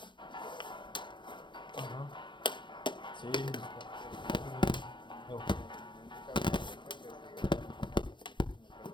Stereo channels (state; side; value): late; right; 0.23 ms